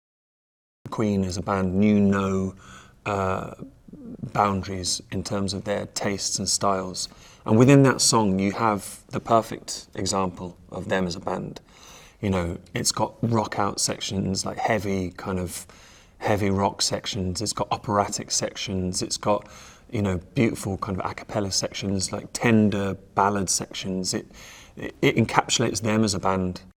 Queen as a band knew no boundaries in terms of their tastes and styles. And within that song, you have the perfect example of them as a band. You know, it's got rock out sections, like heavy rock sections. It's got operatic sections. It's got, you know, beautiful kind of a cappella sections, like tender ballad sections. It encapsulates them as a band.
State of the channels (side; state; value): both; identical; correlation 1.00